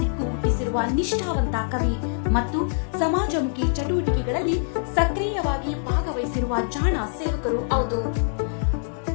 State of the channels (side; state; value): right; silent; digital silence